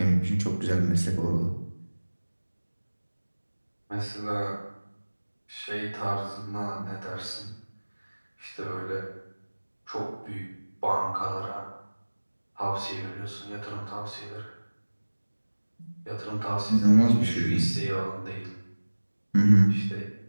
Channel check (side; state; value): both; inverted; correlation -1.00